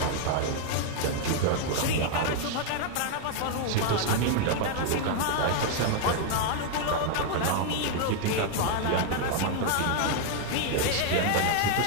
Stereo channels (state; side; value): different; both; correlation 0.00